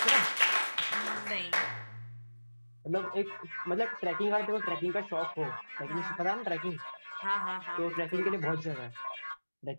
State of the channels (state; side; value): inverted; both; correlation -1.00